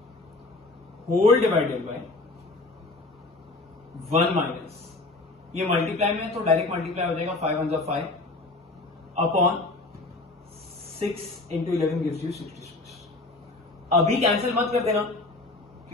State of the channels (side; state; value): right; quieter; 3.1 dB